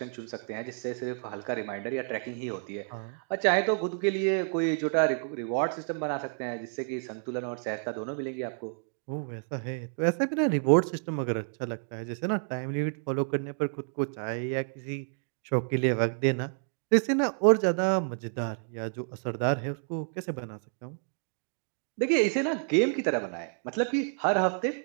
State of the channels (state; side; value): silent; left; 58 dB below the other